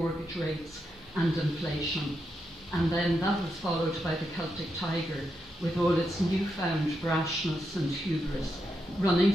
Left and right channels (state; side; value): normal; both; correlation 0.84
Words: rates, and inflation. And then that was followed by the Celtic Tiger, with all its newfound brashness and hubris, running